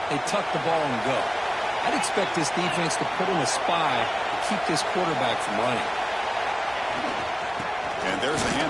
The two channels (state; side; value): identical; both; correlation 1.00